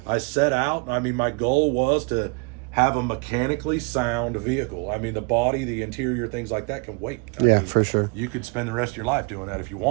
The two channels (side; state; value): left; quieter; 33.0 dB